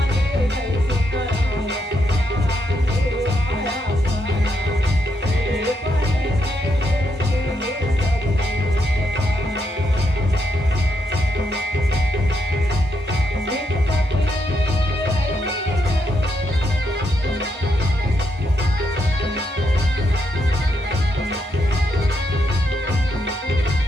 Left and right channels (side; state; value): both; normal; correlation 0.80